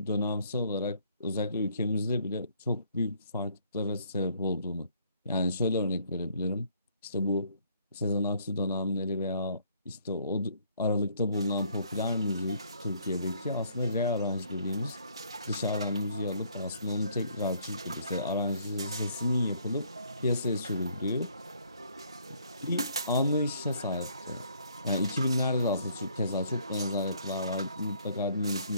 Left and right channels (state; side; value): inverted; both; correlation -0.64